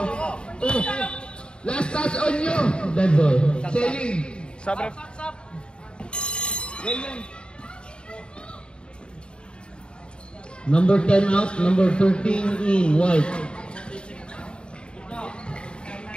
Last touch on you. Dead ball. Selling. Sabre. Number 10 out, number 13 in, white.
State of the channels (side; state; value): right; late; 0.052 ms